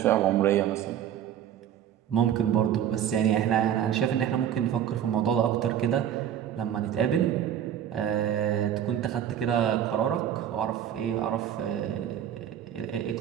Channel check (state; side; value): quieter; left; 9.9 dB